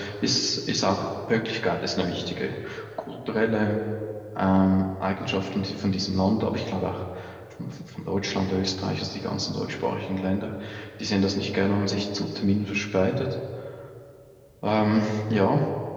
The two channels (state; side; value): identical; both; correlation 1.00